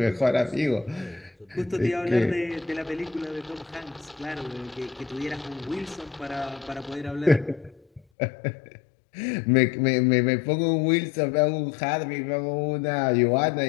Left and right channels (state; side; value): drops out; right; at 8.0 s